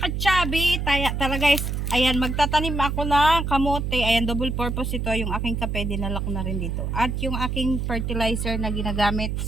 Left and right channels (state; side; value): noise; right; hum, 2 dB below the sound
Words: ka-chubby, tara guys, ayan, magtatanim ako ng kamote. Ayan, double purpose ito. Yung aking kape, dinala ko na rin dito. At yung aking fertilizer na ginagamit